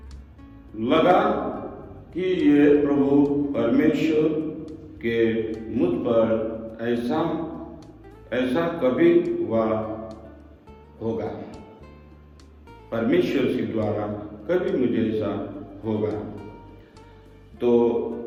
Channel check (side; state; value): both; identical; correlation 1.00